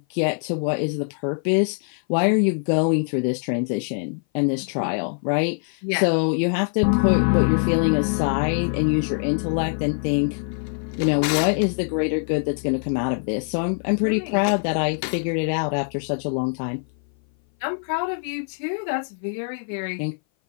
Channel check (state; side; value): silent; right; 58 dB below the other